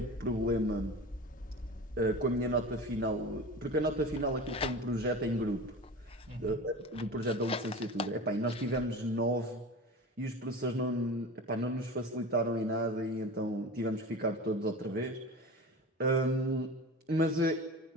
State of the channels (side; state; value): both; normal; correlation 0.33